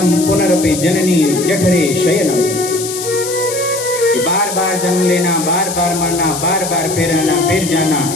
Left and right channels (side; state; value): left; noise; hiss, 7 dB below the sound